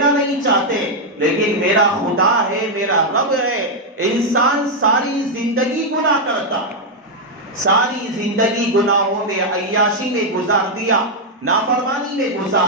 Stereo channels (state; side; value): normal; both; correlation 0.00